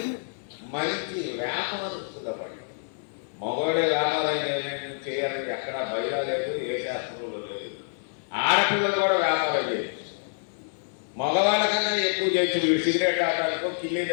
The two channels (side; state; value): right; silent; digital silence